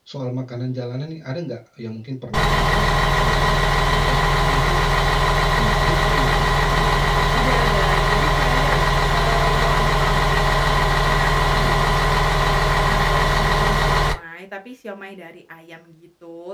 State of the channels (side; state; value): both; identical; correlation 1.00